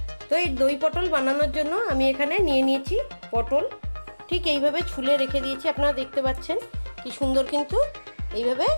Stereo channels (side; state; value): both; inverted; correlation -1.00